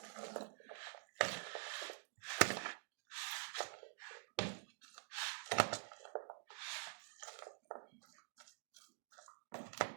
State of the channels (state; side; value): silent; left; digital silence